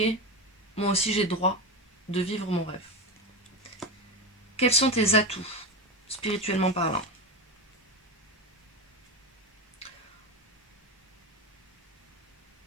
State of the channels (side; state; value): both; normal; correlation 0.20